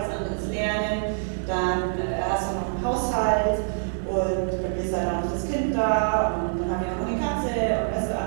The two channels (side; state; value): left; silent; 61 dB below the other